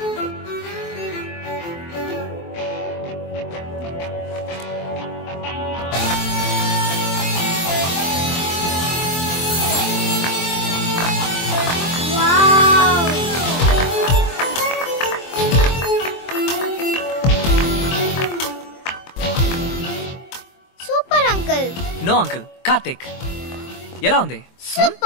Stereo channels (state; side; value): late; right; 23 ms